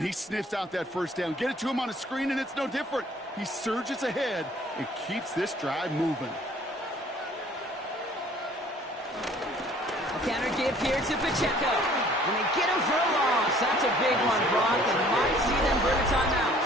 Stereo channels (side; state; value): both; normal; correlation 0.55